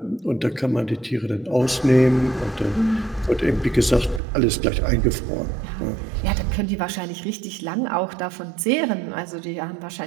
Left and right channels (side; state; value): left; drops out; at 4.2 s